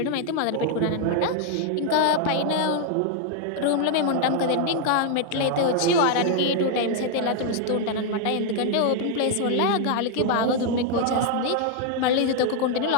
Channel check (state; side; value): different; both; correlation 0.00